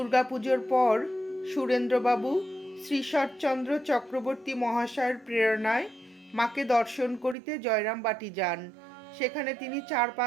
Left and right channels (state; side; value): drops out; left; at 7.4 s